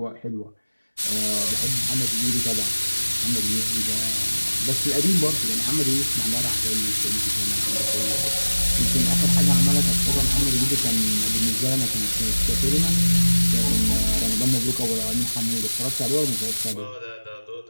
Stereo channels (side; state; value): both; inverted; correlation -1.00